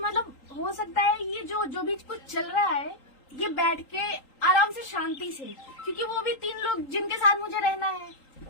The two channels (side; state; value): right; late; 3.8 ms